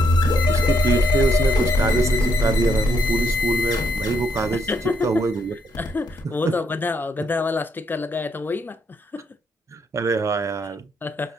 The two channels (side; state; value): both; normal; correlation 0.74